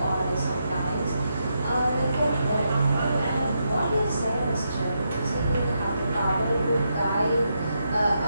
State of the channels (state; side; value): inverted; both; correlation -0.82